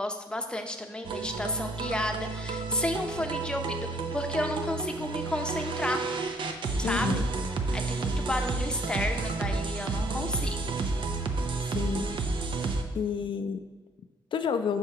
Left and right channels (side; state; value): both; normal; correlation 0.62